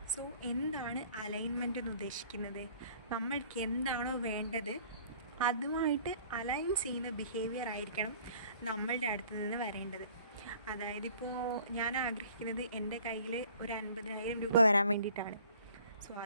So എന്താണ് അലൈൻമെൻറ്റ് എന്ന് ഉദ്ദേശിക്കുന്നത്? നമ്മൾക്ക് എന്താണോ വേണ്ടത് അതുമായിട്ട് അലൈൻ ചെയ്യുന്ന ബിഹേവിയർ ആയിരിക്കണം നമ്മളുടെ അടുത്ത് നിന്ന് വരേണ്ടത്. അതായത് ഇപ്പോൾ ഞാൻ ആഗ്രഹിക്കുന്നത് എൻ്റെ കയ്യിൽ ഒരു 50,000 രൂപ വരാൻ വേണ്ടിയിട്ടാണ്. സോ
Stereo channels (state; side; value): inverted; both; correlation -0.53